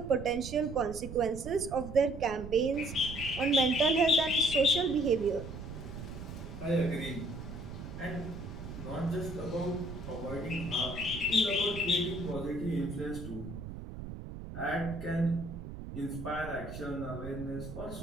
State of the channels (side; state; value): right; noise; rumble, 10 dB below the sound